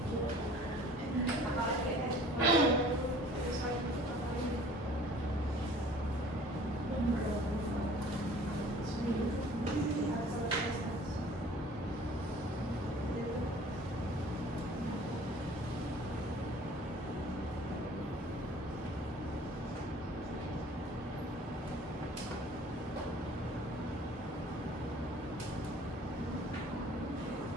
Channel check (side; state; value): both; normal; correlation 0.50